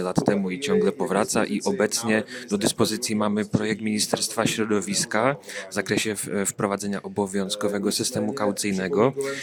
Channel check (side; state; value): both; identical; correlation 1.00